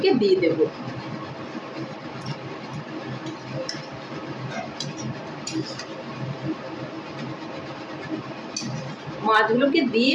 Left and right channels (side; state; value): both; identical; correlation 1.00